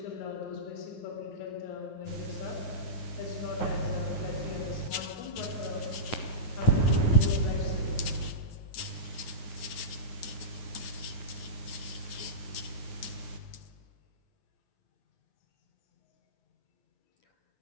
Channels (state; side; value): late; right; 9.4 ms